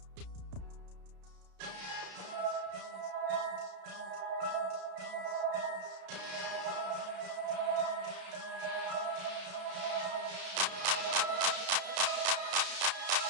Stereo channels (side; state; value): left; late; 32 ms